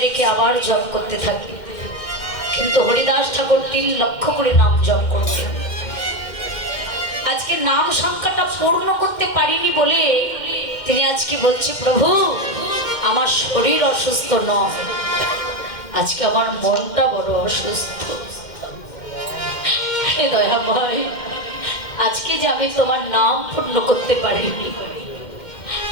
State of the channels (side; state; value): right; late; 2.1 ms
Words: রেখে আবার জপ করতে থাকি। কিন্তু হরিদাস ঠাকুর 3 লক্ষ করে নাম জপ করতেন। আজকে নাম সংখ্যাটা পূর্ণ করতে পারিনি বলে তিনি আজকে বলছে, প্রভু আমার শরীর অসুস্থ নয়, আজকে আমার মনটা বড় অসুস্থ। হে দয়াময়, আজকে যে আমি তোমার নাম পূর্ণ করতে পারিনি।